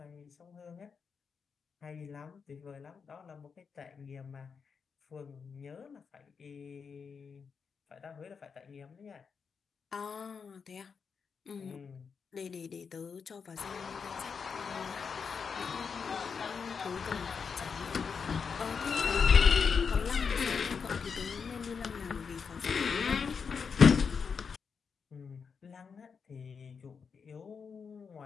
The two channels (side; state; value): right; quieter; 5.9 dB